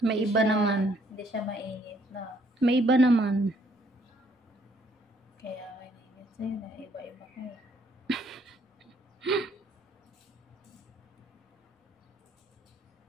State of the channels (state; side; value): normal; both; correlation 0.66